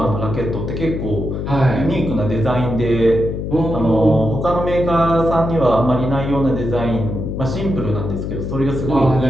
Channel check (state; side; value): noise; left; hum, 4 dB below the sound